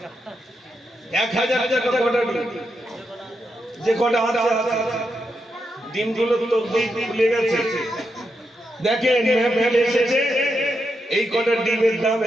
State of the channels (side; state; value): both; normal; correlation 0.84